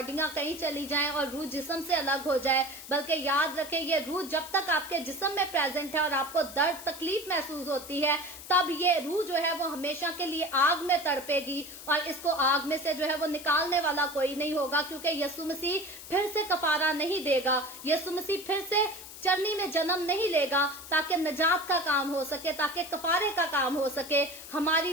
कहीं चली जाएं और रूह जिस्म से अलग हो जाए, बल्कि याद रखें ये रूह जब तक आपके जिस्म में प्रेजेंट है और आपको दर्द तकलीफ महसूस होती है, तब ये रूह जो है वो हमेशा के लिए आग में तड़पेगी, और इसको आग में से जो है वो निकालने वाला कोई नहीं होगा, क्योंकि यीशु मसीह फिर से कफारा नहीं देगा, यीशु मसीह फिर से चरनी में जन्म नहीं लेगा ताकि नजात का काम हो सके, ताकि कफारे का काम हो सके।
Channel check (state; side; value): noise; left; hiss, 14 dB below the sound